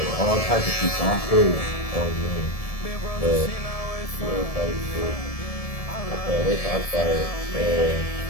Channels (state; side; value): late; right; 1.7 ms